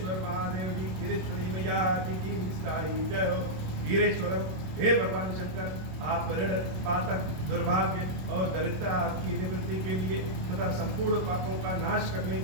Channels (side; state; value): left; late; 27 ms